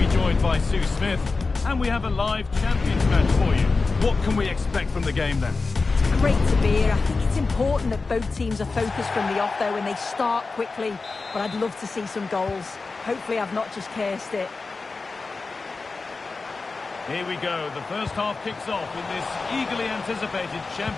joined by Sue Smith. And we have a live Champions match for you. What can we expect from the game then? It's great to be here. I think it's important that both teams are focused from the off though and they start quickly. But I'd love to see some goals. Hopefully I've not just cursed it. Here we go. The first half kicks off in this eagerly anticipated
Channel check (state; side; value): quieter; right; 4.0 dB